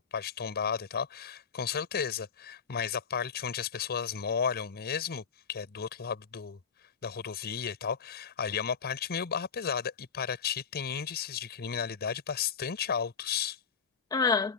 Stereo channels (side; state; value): right; quieter; 6.3 dB